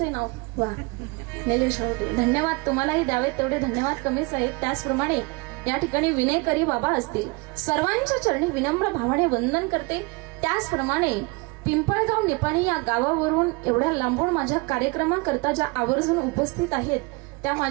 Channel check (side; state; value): left; quieter; 27.0 dB